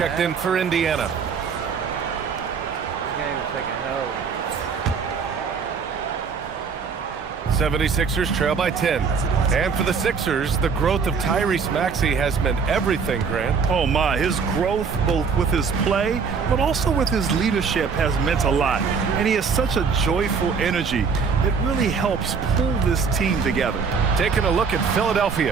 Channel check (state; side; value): quieter; left; 5.6 dB